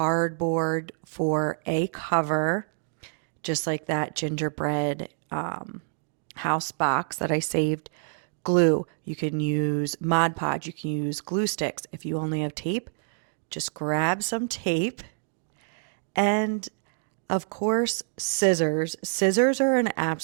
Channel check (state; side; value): silent; left; digital silence